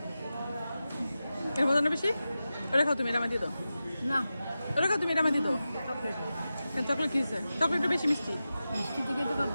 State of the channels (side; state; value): both; inverted; correlation -0.93